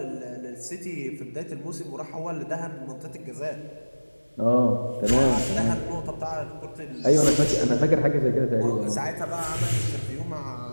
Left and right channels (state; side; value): inverted; both; correlation -1.00